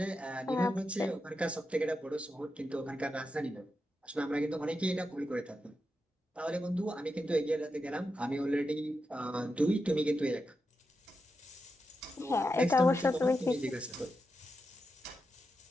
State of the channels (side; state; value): both; normal; correlation 0.88